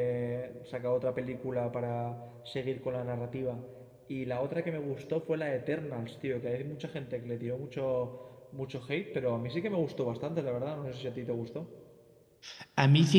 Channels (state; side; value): identical; both; correlation 1.00